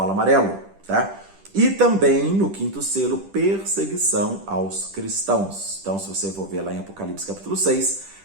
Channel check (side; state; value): left; late; 10 ms